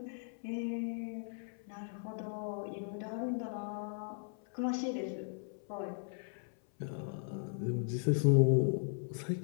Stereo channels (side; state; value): right; silent; 53 dB below the other